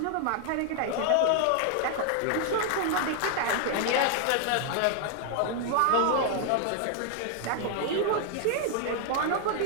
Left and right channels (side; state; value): both; different; correlation 0.00